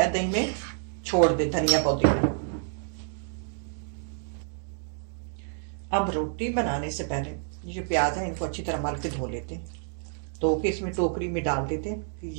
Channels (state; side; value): silent; left; digital silence